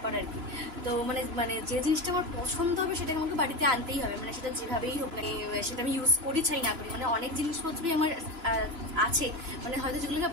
আর কি। তো মানে যে জিনিসটা আমার পছন্দ হবে সেটাকে আমাকে বাড়িতে আনতেই হবে, মানে সেটা যেভাবেই হোক, মানে সেটা আমি ইউজ করি চাই না করি। মানে অনেক জিনিসপত্রই আমার আছে, মানে হয়তো যেগুলোকে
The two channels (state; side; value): late; left; 3.0 ms